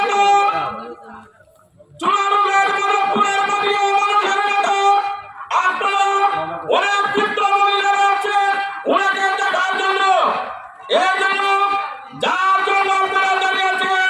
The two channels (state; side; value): identical; both; correlation 1.00